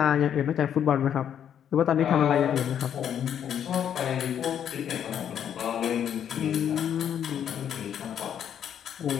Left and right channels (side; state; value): right; quieter; 9.2 dB